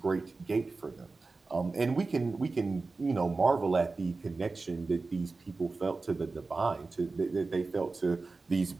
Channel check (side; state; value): left; quieter; 3.8 dB